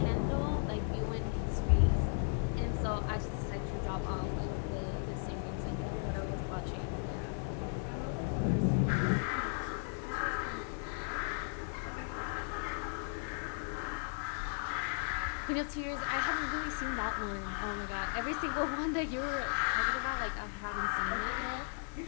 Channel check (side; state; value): right; silent; 54 dB below the other